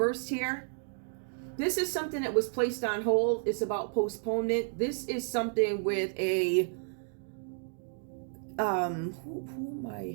here. This is something that was placed on hold. It's about postponement. This is something with a who am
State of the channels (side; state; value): left; silent; 56 dB below the other